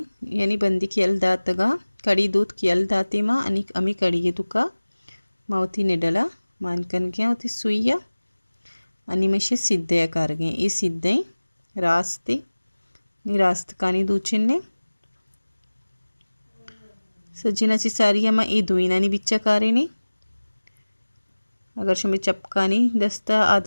यानी बंदी की यल्दातगा कड़ी दूध की यल्दाती माँ अनिक अमी कड़ी ये तुका मावती निडला मानकन गया होती सुइया अनिमेशे सिद्धे कारगे ये सिद्धे रास्ते नी रास्त कानी दूचिन्ने सज्जिनाची सारियामा ये दुईनानी बिच्चा कारेनी अगर शुमे चपकानी दस्ता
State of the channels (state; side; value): inverted; both; correlation -1.00